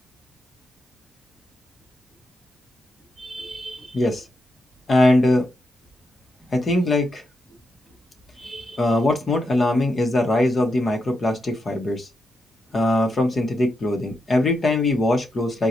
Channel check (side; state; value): both; normal; correlation 0.85